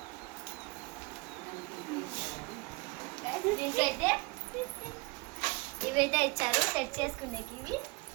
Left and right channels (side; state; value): left; quieter; 25.8 dB